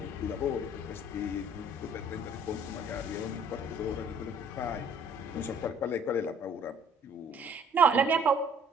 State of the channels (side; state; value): both; normal; correlation 0.56